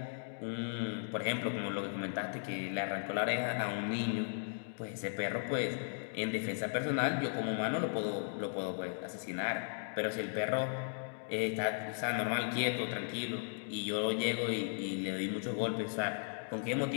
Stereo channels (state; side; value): silent; right; digital silence